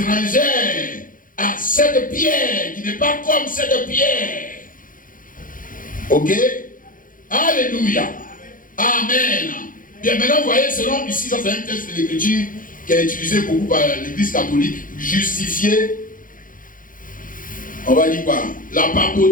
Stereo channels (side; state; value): right; late; 0.40 ms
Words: à cette pierre, qui n'est pas comme cette pierre. Ok? Alléluia. Amen. Bien, maintenant, vous voyez, selon ici, ça c'est un texte de l'écriture qui est utilisé beaucoup par l'église catholique, justifier, on va dire quoi? La